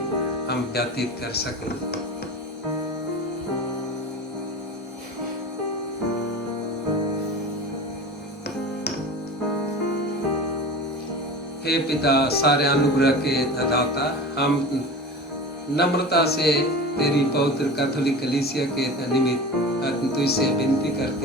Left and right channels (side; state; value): both; normal; correlation 0.33